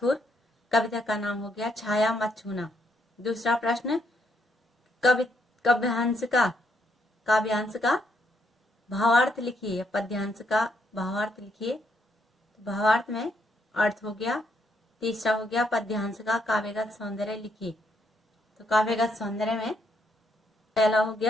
कविता का नाम हो गया छाया मत छूना। दूसरा प्रश्न, काव्यांश का भावार्थ लिखिए, पद्यांश का भावार्थ लिखिए। भावार्थ में अर्थ हो गया। तीसरा हो गया पद्यांश का काव्यगत सौंदर्य लिखिए। तो काव्यगत सौंदर्य में पहला हो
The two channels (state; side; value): normal; both; correlation 0.75